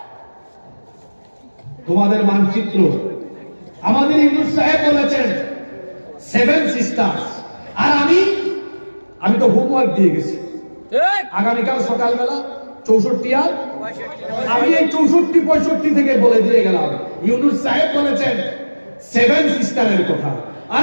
তোমাদের মানচিত্র আমাদের ইউনুস সাহেব বলেছেন 7 সিস্টার্স, আর আমি তো হোমওয়ার্ক দিয়ে গেছি। আগামীকাল সকালবেলা 64 আর আমি এই 64-65 থেকে বলে দিয়ে গেলাম। ইউনুস সাহেব বলেছেন 7 সিস্টারের কথা, আর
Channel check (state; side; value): inverted; both; correlation -1.00